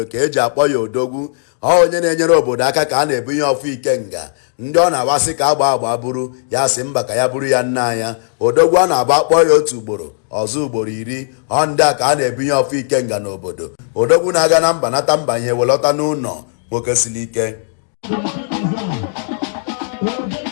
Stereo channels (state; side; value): silent; right; digital silence